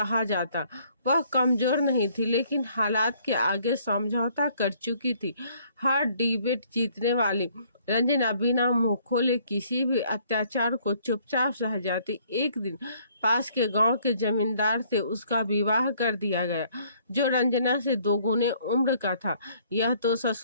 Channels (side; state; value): both; inverted; correlation -0.62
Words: जाता। वह कमजोर नहीं थी, लेकिन हालात के आगे समझौता कर चुकी थी। हर डिबेट जीतने वाली रंजना बिना मुंह खोले किसी भी अत्याचार को चुपचाप सह जाती। एक दिन पास के गांव के जमींदार से उसका विवाह कर दिया गया, जो रंजना से 2 गुने उम्र का था। यह तो